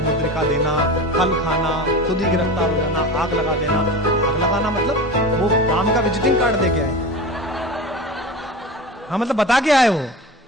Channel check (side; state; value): both; normal; correlation 0.30